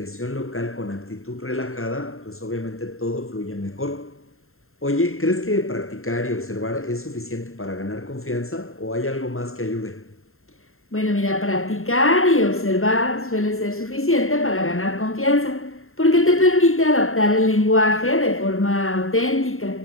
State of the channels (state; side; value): late; right; 0.61 ms